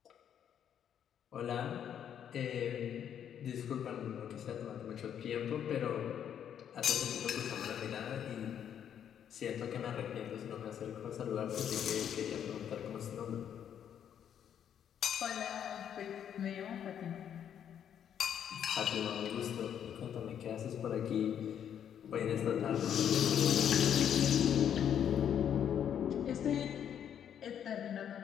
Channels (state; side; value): quieter; right; 9.1 dB